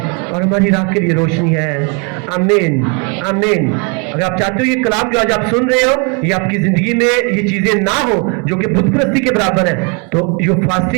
और हमारी राह के लिए रोशनी है। आमीन, आमीन। अगर आप चाहते हो ये कलाम जो आज आप सुन रहे हो, ये आपकी जिंदगी में ये चीजें ना हो जो कि बुत परस्ती के बराबर है, तो जो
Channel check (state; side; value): quieter; left; 33.8 dB